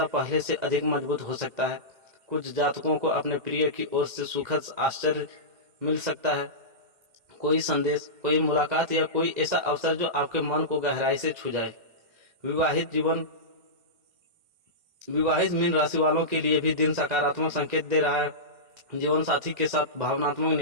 पहले से अधिक मजबूत हो सकता है। कुछ जातकों को अपने प्रिय की ओर से सुखद आश्चर्य मिल सकता है। कोई संदेश, कोई मुलाकात या कोई ऐसा अवसर जो आपके मन को गहराई से छू जाए। विवाहित मीन राशि वालों के लिए भी दिन सकारात्मक संकेत दे रहा है। जीवन साथी के साथ भावनात्मक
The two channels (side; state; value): left; late; 2.1 ms